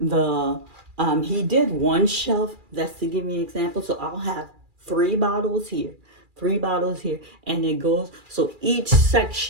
he did 1 shelf. That's to give me an example. So I'll have 3 bottles here, 3 bottles here, and it goes. So each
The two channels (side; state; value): left; late; 2.4 ms